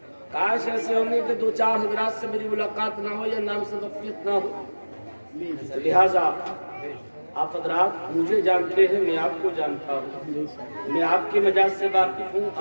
کاش ایسے ہونے کہ دو چار حضرات سے میری ملاقات نہ ہو یا نام سے وقفیت نہ ہو. لہذا آپ حضرات مجھے جانتے ہیں، میں آپ کو جانتا ہوں. میں آپ کے مجاز سے واقف ہوں،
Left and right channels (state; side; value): inverted; both; correlation -1.00